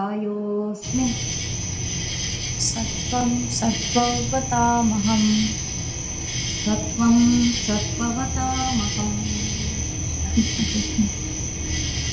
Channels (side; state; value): both; identical; correlation 1.00